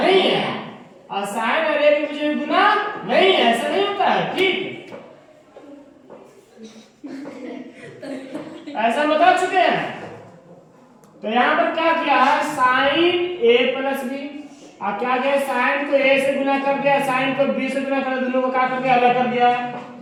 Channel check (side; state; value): both; identical; correlation 1.00